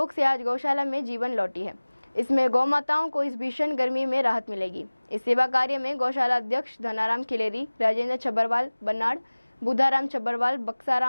से आज गौशाला में जीवन लौटी है। इसमें गौ माताओं को इस भीषण गर्मी में राहत मिलेगी। इस सेवा कार्य में गौशाला अध्यक्ष धनाराम खिलेरी, राजेंद्र छबरवाल बनाड़, बुधाराम छबरवाल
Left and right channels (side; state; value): both; inverted; correlation -1.00